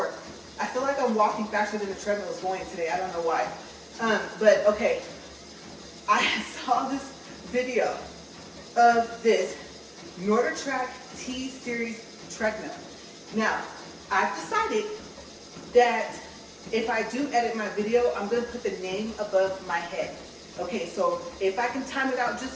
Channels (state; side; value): identical; both; correlation 1.00